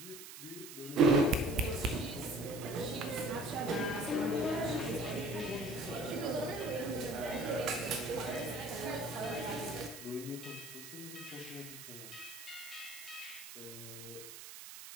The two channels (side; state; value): right; noise; hiss, 12 dB below the sound